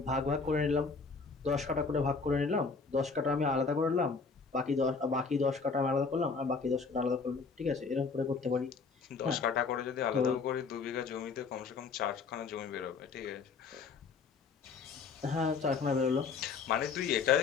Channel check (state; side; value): quieter; right; 4.9 dB